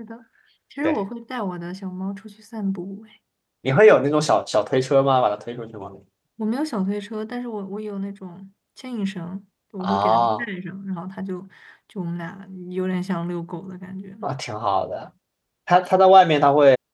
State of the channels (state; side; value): identical; both; correlation 1.00